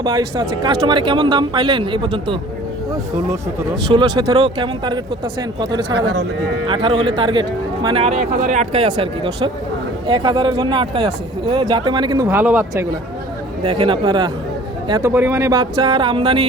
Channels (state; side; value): normal; both; correlation 0.49